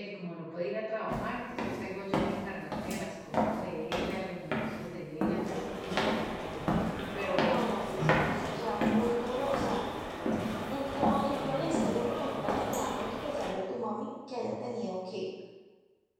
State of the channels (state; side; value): identical; both; correlation 1.00